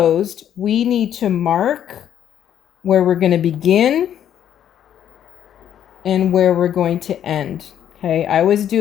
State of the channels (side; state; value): right; quieter; 10.0 dB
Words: we need to mark where we're going to begin and where we're going to end. Okay, I always